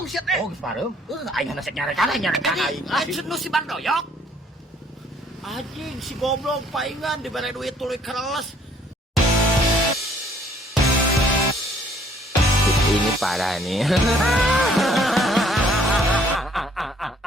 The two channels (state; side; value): normal; both; correlation 0.61